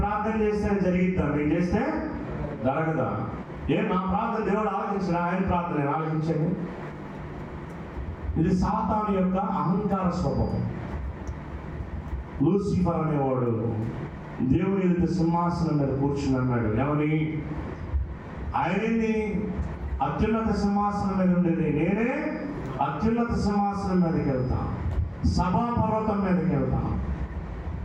ప్రార్థన చేస్తే జరిగిద్దాం, నేను చేస్తే జరగదా? నా ప్రార్థన దేవుడు ఆలోచించిన, ఆయన ప్రార్థన ఆలోచించండి. ఇది సాతాను యొక్క అహంకార స్వభావం. లూసిఫర్ అనేవాడు దేవుని ఎదుట సింహాసనం మీద కూర్చుని అన్నాడు. ఏమని? ఆయనని అత్యున్నత సింహాసనం మీద ఉండేది నేనే అత్యున్నత సింహాసనం మీదకి వెళ్తాను, సభాపర్వతం మీదకి వెళ్తాను,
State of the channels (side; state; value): both; identical; correlation 1.00